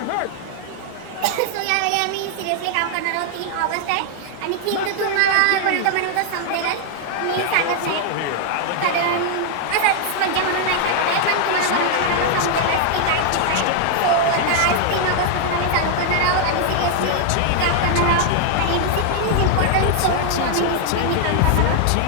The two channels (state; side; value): different; both; correlation 0.00